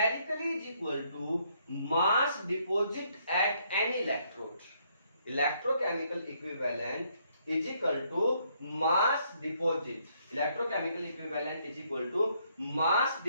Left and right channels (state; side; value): inverted; both; correlation -0.71